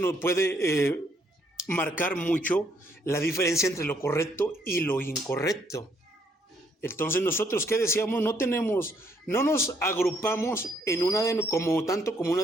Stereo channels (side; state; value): both; normal; correlation 0.70